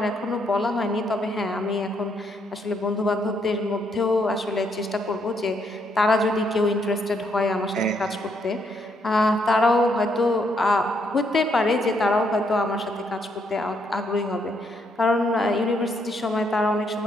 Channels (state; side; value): normal; both; correlation 0.74